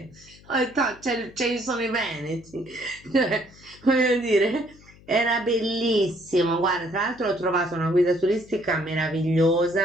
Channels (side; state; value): left; noise; hum, 24 dB below the sound